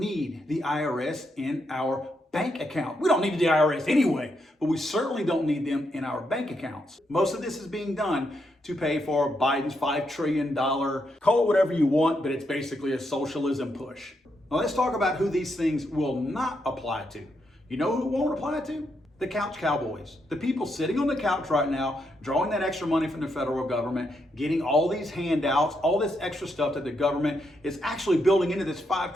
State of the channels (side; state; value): both; normal; correlation 0.80